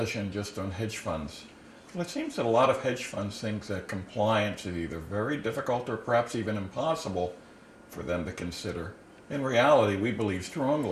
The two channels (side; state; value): both; identical; correlation 1.00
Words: just on hedge funds? Well, it seems that a lot of hedge funds think that compliance is either very difficult or perhaps even impossible for them to consider. In reality, we believe